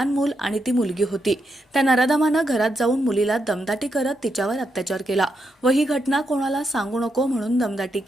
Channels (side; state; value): both; normal; correlation 0.83